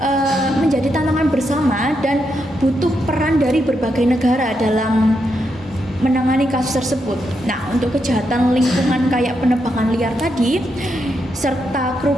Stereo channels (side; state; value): both; normal; correlation 0.82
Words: menjadi tantangan bersama dan butuh peran dari berbagai negara dalam menangani kasus tersebut. Nah, untuk kejahatan lingkungan kayak penebangan liar tadi serta